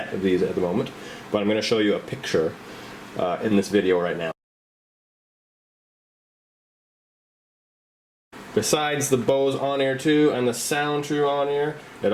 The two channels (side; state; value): both; identical; correlation 1.00